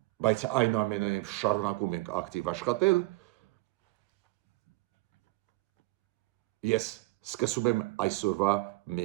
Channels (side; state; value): left; quieter; 20.6 dB